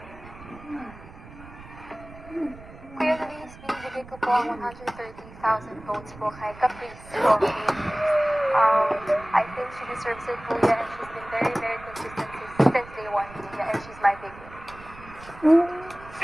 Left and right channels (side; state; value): right; noise; rumble, 18 dB below the sound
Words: Kuya Luis, binibigay ko po ang 130,000 votes po kay Caprice Coffee. I think she deserves it, Kuya, and she's been very, very consistent since day one, Kuya, and she's my big win. Si